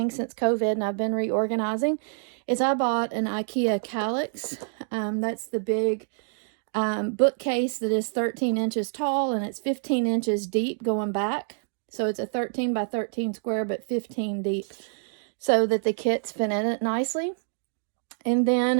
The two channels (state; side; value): silent; left; digital silence